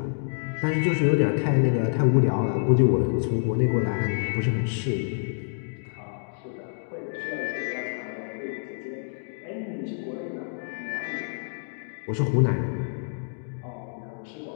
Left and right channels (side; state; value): right; silent; digital silence